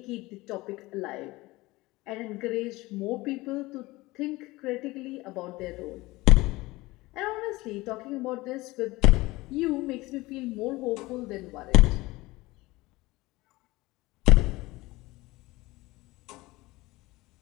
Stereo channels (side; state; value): right; quieter; 20.5 dB